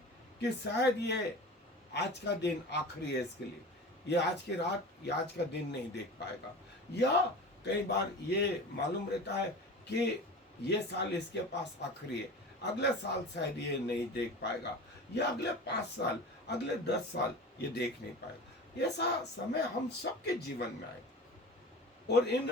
कि शायद ये आज का दिन आखिरी है इसके लिए, ये आज की रात या आज का दिन नहीं देख पाएगा, या कई बार ये मालूम रहता है कि ये साल इसके पास आखिरी है, अगले साल शायद ये नहीं देख पाएगा, या अगले 5 साल, अगले 10 साल ये देख नहीं पाएगा। ऐसा समय हम सबके जीवन में आए, और इन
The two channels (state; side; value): normal; both; correlation 0.34